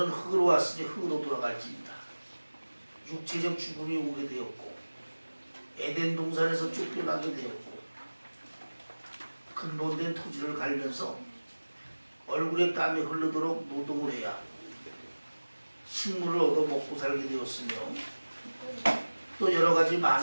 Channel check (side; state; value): both; inverted; correlation -1.00